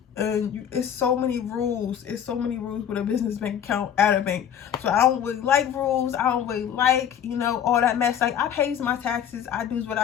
And it's so many rules. It's so many rules with a business bank account at a bank. So I don't really like rules. I don't really like, you know, all that mess. Like, I pays my taxes. I do what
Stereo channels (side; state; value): right; quieter; 9.1 dB